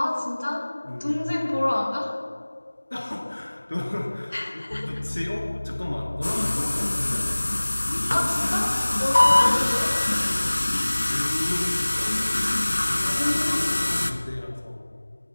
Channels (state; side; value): inverted; both; correlation -1.00